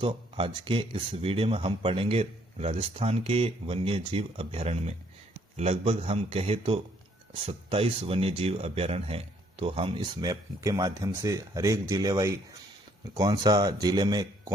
आज के इस वीडियो में हम पढ़ेंगे राजस्थान के वन्य जीव अभ्यारण्य में लगभग हम कहे तो 27 वन्य जीव अभ्यारण्य हैं। तो हम इस मैप के माध्यम से हर एक जिले वाई कौन सा जिले में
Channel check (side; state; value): both; normal; correlation 0.66